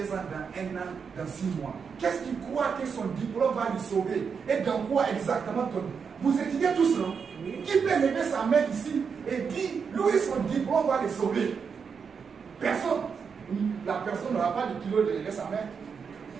ans, dans 1 an, dans 6 mois? Qu'est-ce qu'il croit que son diplôme va le sauver? Et dans quoi exactement Vous étudiez tous, non? Qui peut lever sa main ici et dire, lui, son diplôme va le sauver? Personne. La personne n'aura pas le kilo de lever sa main.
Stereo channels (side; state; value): left; quieter; 6.1 dB